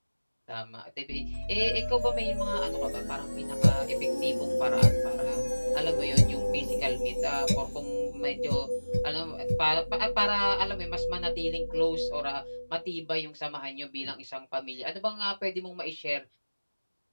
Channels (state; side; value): inverted; both; correlation -1.00